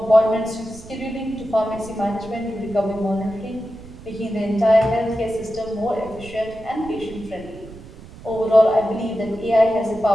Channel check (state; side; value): noise; right; rumble, 17 dB below the sound